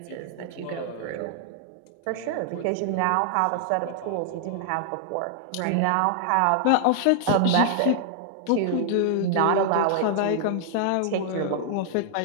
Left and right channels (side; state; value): both; different; correlation 0.00